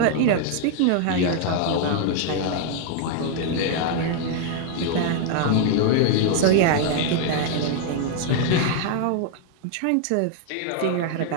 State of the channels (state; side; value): different; both; correlation 0.00